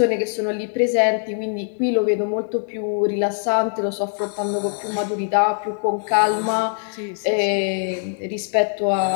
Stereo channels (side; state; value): right; silent; 57 dB below the other